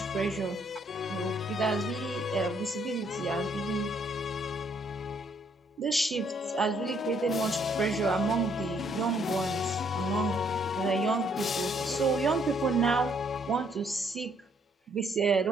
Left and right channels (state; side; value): normal; both; correlation 0.68